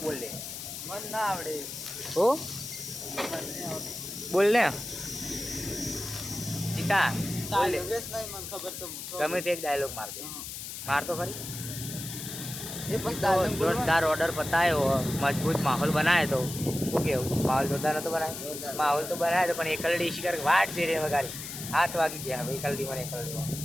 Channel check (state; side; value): noise; left; hiss, 8 dB below the sound